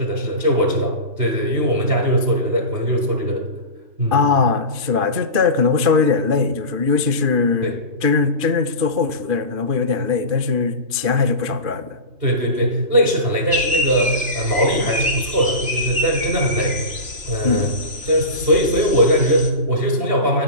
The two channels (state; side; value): late; left; 3.0 ms